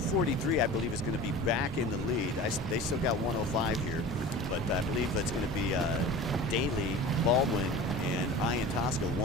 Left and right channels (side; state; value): both; normal; correlation 0.36